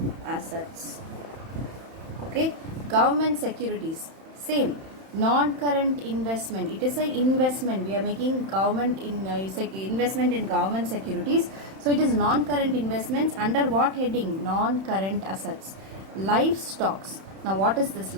assets. Okay, government securities, same, non current investment. It is an investment. We are making government investment in government securities. So it is non current investments. Under what heading? Non current assets. Livestocks. Now what is this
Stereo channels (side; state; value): left; late; 31 ms